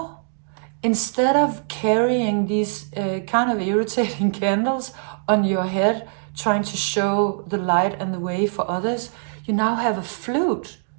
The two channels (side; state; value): left; silent; digital silence